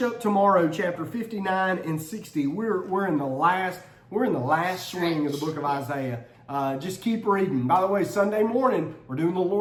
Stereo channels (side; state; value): both; identical; correlation 1.00